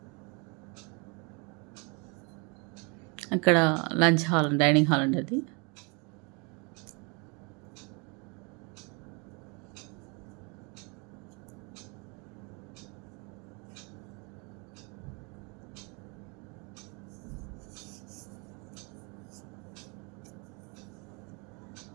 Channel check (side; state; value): left; quieter; 32.0 dB